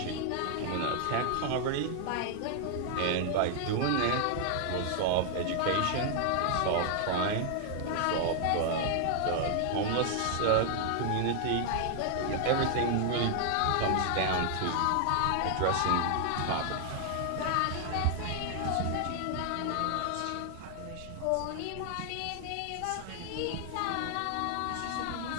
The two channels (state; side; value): different; both; correlation 0.00